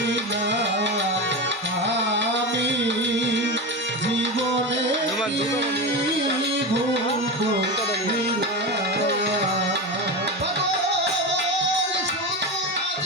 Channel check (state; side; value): normal; both; correlation 0.21